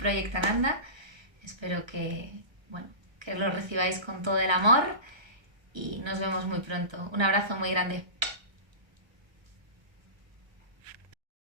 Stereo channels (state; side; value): late; left; 1.3 ms